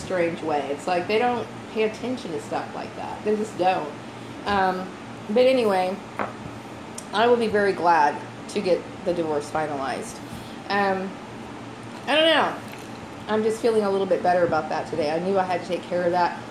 way. It's like they don't pay attention to stuff like that. They just don't. But anyway, I will be very glad to get the divorce finalized. I don't know. I'm just feeling a little bit better about that today. I knew I had to take care of that.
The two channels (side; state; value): both; identical; correlation 1.00